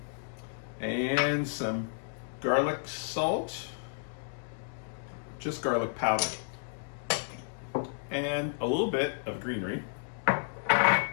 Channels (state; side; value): silent; right; digital silence